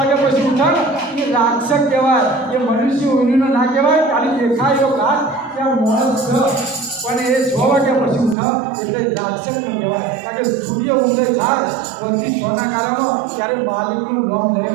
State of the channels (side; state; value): left; drops out; at 8.3 s